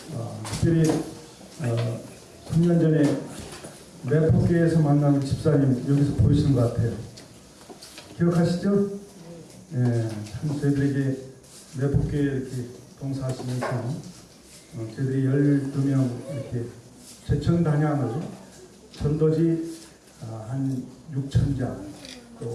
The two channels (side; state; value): both; identical; correlation 1.00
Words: 특별히 3년 전에 매포교회에서 만난 집사님 여기서 보이시는 것 같아요. 기억하시죠? 네, 참 저희들에게 매포교회 이렇게 봉사하시면서 저희들이 12명 이렇게 제천 단양을 전도지 한 6,000자